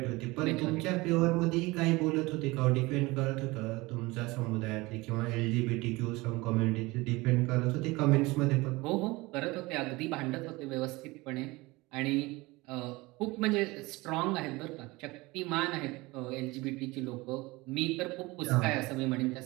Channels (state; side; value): quieter; left; 22.3 dB